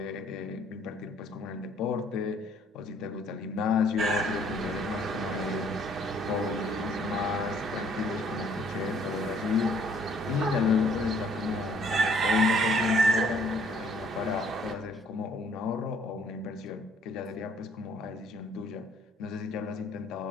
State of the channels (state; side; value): normal; both; correlation 0.62